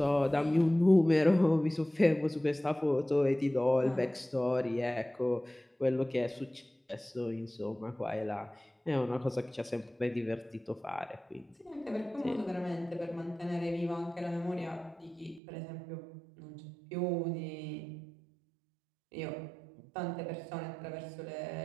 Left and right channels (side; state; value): left; drops out; at 15.4 s